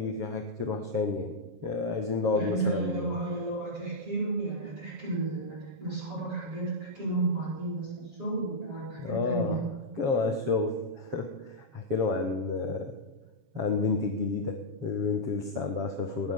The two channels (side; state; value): left; late; 7.3 ms